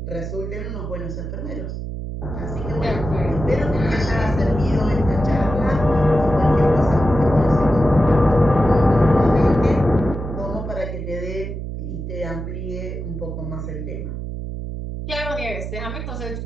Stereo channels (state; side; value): noise; right; hum, 6 dB below the sound